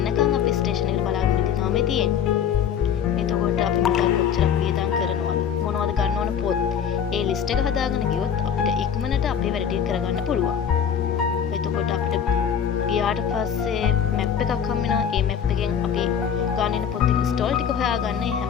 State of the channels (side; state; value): right; quieter; 8.0 dB